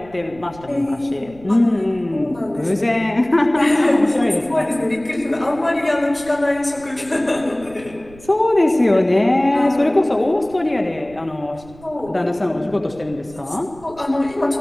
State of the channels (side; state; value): right; noise; rumble, 22 dB below the sound